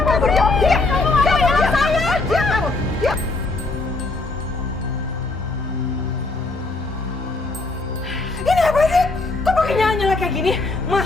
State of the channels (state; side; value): quieter; right; 3.3 dB